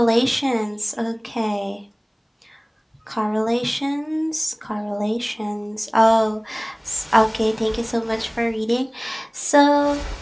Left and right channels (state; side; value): identical; both; correlation 1.00